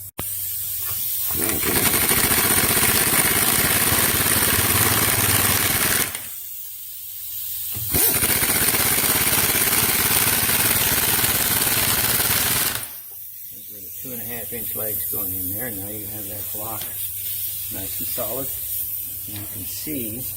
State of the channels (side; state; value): both; identical; correlation 1.00